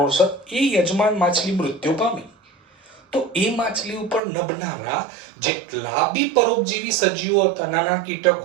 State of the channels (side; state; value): left; drops out; at 4.2 s